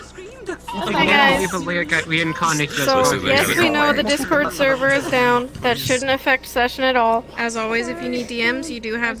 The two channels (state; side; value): identical; both; correlation 1.00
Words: Hi guys. We didn't contact So, yes, we know the Discord server is down. That shouldn't affect session at all. As always, if you need DMs, you do have